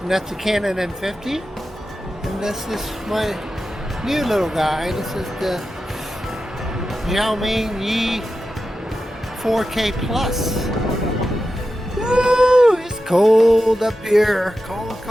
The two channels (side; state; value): both; normal; correlation 0.91